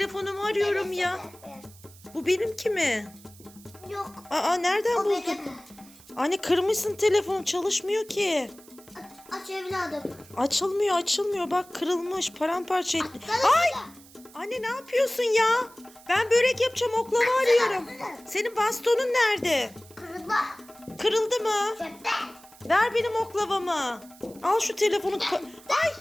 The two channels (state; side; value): noise; right; hiss, 23 dB below the sound